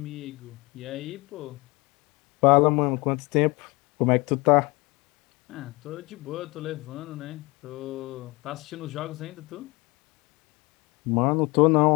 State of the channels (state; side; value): quieter; right; 24.6 dB